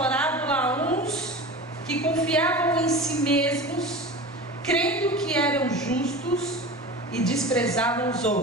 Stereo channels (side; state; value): both; normal; correlation 0.33